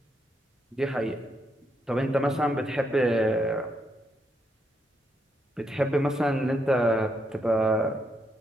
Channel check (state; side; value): normal; both; correlation 0.78